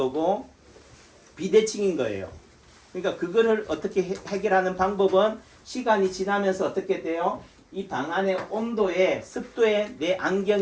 비대칭인 거예요. 그러니까 그거를 어떻게 해결하는 방법은 시간이 지나면서 어떻게 돼요? 이 방 안의 온도에 습도에 내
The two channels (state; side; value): identical; both; correlation 1.00